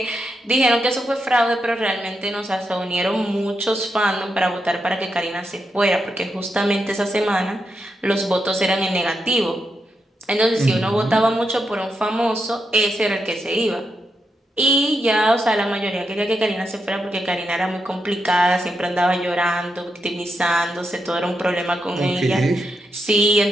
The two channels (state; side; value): normal; both; correlation 0.84